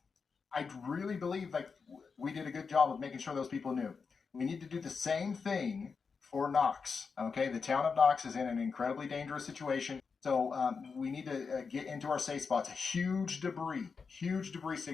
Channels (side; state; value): right; quieter; 5.3 dB